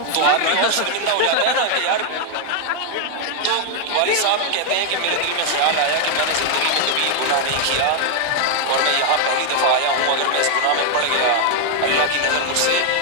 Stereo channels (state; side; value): different; both; correlation 0.00